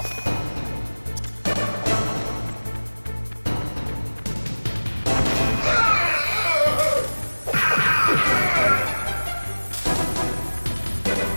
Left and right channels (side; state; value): both; inverted; correlation -1.00